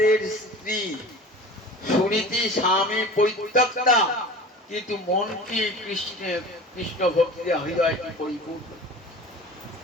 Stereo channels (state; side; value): normal; both; correlation 0.38